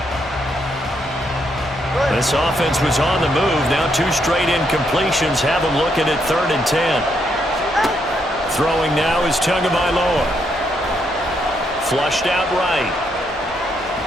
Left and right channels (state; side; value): normal; both; correlation 0.76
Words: This offense was on the move. Now 2 straight incompletions have them looking at 3rd and 10. Throwing now is Tagovailoa. Flushed out right.